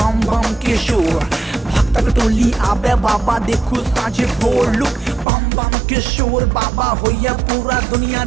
बम के शोर भक्तक टोली आबे बाबा देखू साझे भोर लुक बम बम के शोर बाबा होइया पूरा दुनिया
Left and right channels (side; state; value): left; drops out; at 5.2 s